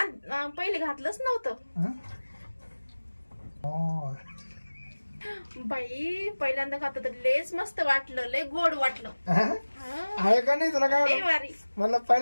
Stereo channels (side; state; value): both; inverted; correlation -1.00